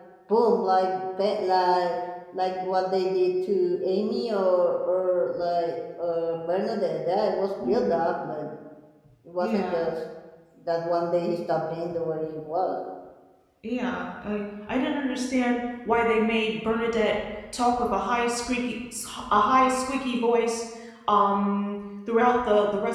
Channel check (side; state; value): both; identical; correlation 1.00